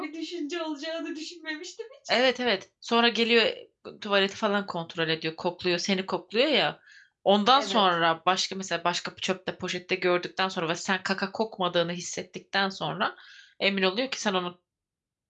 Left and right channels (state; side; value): identical; both; correlation 1.00